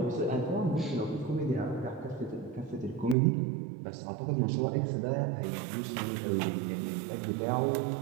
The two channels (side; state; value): left; drops out; at 3.2 s